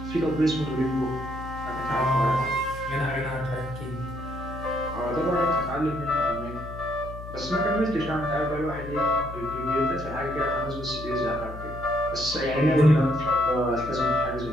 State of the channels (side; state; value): left; noise; hum, 11 dB below the sound